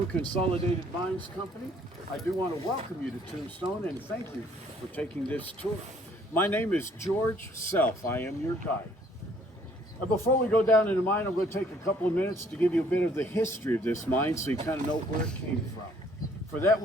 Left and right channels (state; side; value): normal; both; correlation 0.62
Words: Consolidated Mines Company. I do want to welcome you to Tombstone and thank you for taking this tour. My name is George Self. I am your guide. Before we go down in the mine, I'm going to take a couple of minutes to give you a bit of the history of this mine so you kind of know where it came from. For that,